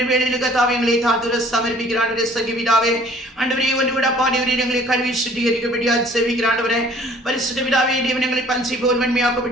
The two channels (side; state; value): both; normal; correlation 0.54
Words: வேளையில் கர்த்தாவே எங்களை தாழ்த்துற சமர்ப்பிக்கிற ஆண்டவரே சகி பிதாவே, ஆண்டவரே, ஒன்று விட பாடியவரே எங்களை கல்வி சுத்திகரிக்கப்படியாக செவிக்கிற ஆண்டவரே, பரிசுத்த பிதாவே, தேவன் எங்களை பஞ்சி போல்